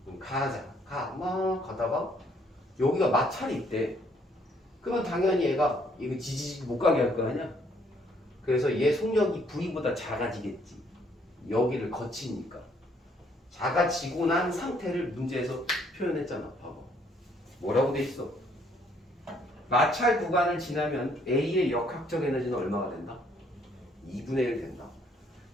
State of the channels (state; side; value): normal; both; correlation 0.66